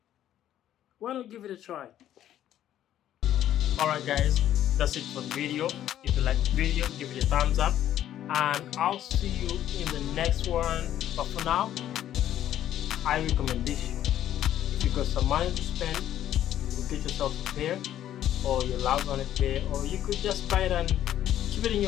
why not give it a try? Alright guys, that's it for the video. If you like the video, give it a thumbs up, and I'll see you in the next one. But for now, I recommend this. If you got some money to spend, you can get yourself a pair, or your loved one a pair, or you could just buy it and keep it in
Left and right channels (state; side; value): quieter; right; 11.6 dB